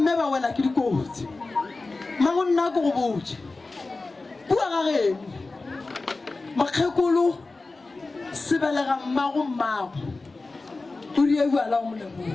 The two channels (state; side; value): quieter; right; 3.5 dB